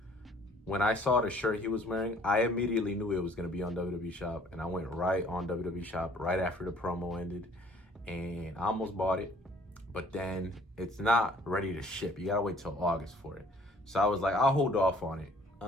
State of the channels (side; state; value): both; normal; correlation 0.57